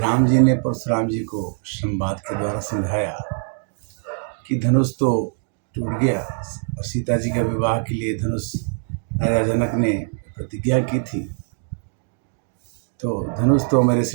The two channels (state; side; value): silent; left; 57 dB below the other